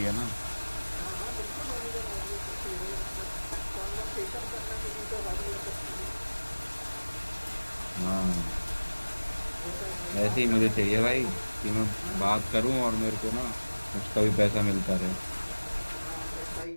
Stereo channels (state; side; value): inverted; both; correlation -1.00